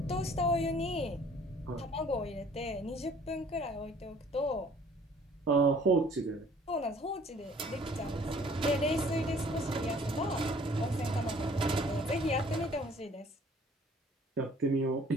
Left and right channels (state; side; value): normal; both; correlation 0.56